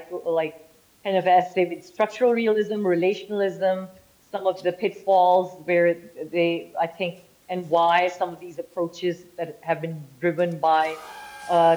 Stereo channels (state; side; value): identical; both; correlation 1.00